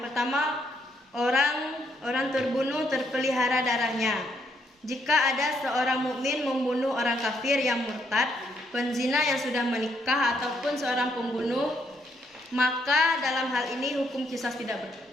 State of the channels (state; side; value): normal; both; correlation 0.74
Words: pertama, orang terbunuh terpelihara darahnya. Jika ada seorang mukmin membunuh orang kafir yang murtad, penzina yang sudah menikah ataupun seorang pembunuh, maka dalam hal ini hukum qisas tidak